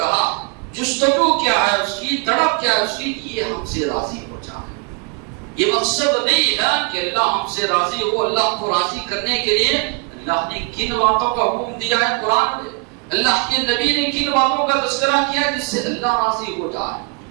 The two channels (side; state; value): left; quieter; 34.1 dB